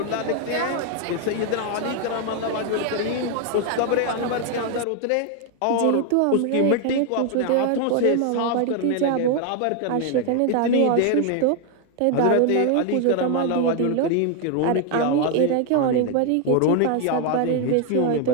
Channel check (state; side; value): different; both; correlation 0.00